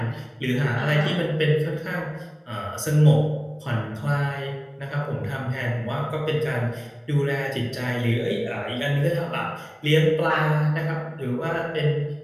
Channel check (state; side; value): identical; both; correlation 1.00